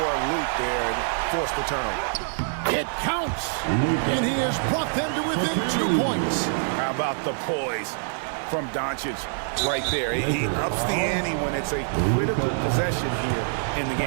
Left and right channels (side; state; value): left; silent; 62 dB below the other